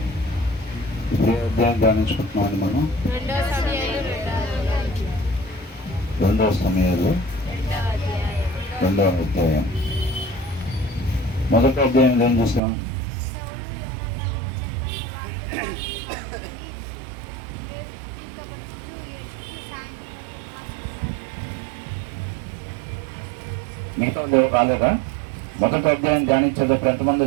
ఇప్పుడు అధ్యాయం ధ్యానించుకుంటున్నామండి మనం. 2వ సమయాలు 2వ అధ్యాయం. మొదటి అధ్యాయంలో ఏం చూసాం? మిగతా ఎవరు రాలేదా? మొదటి అధ్యాయం ధ్యానించేటప్పుడు ఎంతమంది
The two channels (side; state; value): left; drops out; at 12.6 s